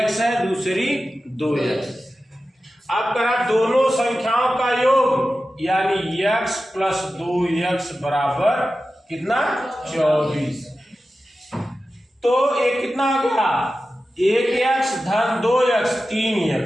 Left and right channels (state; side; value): normal; both; correlation 0.93